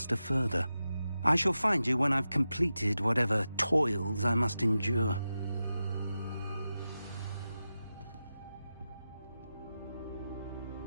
further. I shall find you when I've completed whatever toils I must endure.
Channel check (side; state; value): both; inverted; correlation -0.92